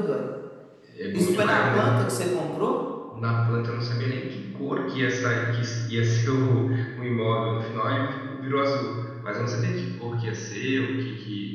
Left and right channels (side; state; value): both; identical; correlation 1.00